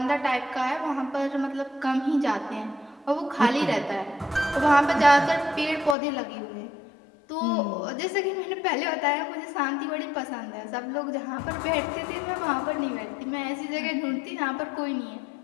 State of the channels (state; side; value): drops out; right; at 6.0 s